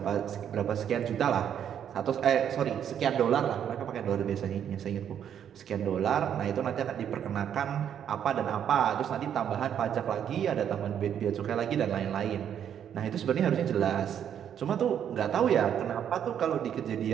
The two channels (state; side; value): quieter; left; 9.1 dB